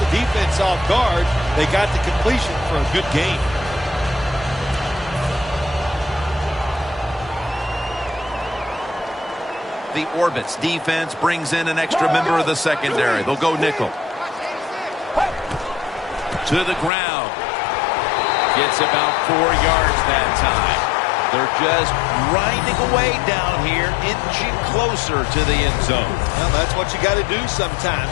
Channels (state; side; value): drops out; right; at 16.9 s